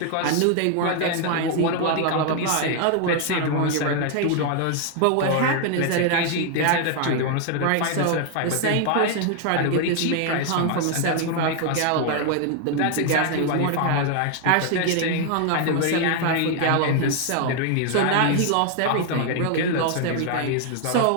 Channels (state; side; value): different; both; correlation 0.00